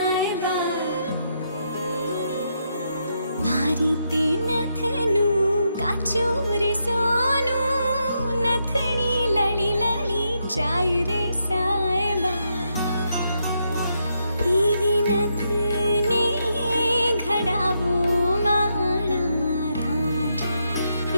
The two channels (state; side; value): inverted; both; correlation -0.80